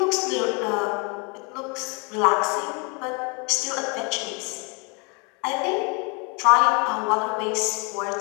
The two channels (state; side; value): quieter; right; 32.5 dB